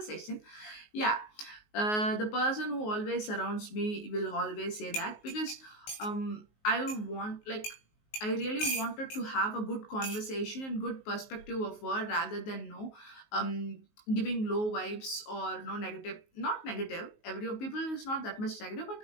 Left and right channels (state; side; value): late; right; 19 ms